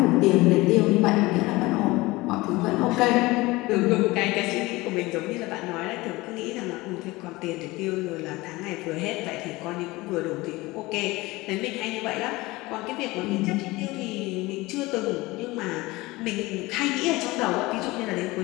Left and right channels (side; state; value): right; quieter; 21.0 dB